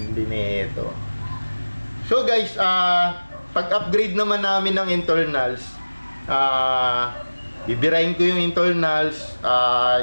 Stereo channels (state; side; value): inverted; both; correlation -1.00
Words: nito. So guys, pag-upgrade naman namin ng internals, bibirahin ko yung internals,